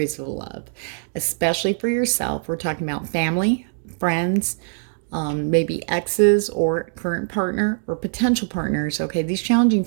of love, especially for yourself. We're talking about family, friends, maybe exes or current partner or potential partners. Okay, these challenging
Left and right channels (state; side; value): silent; left; digital silence